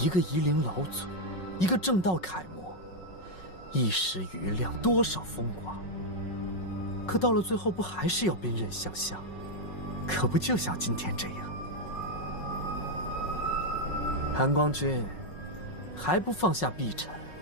个夷陵老祖，一个正道楷模，一时余亮，多少风光。可到了最后，不还是要兵刃相向？可不就像今天这样？韩光君，还不放下碧晨？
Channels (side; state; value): right; late; 5.4 ms